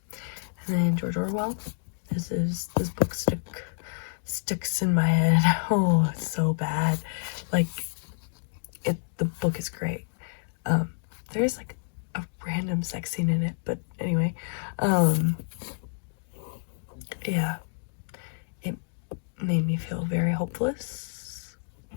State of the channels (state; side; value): silent; right; digital silence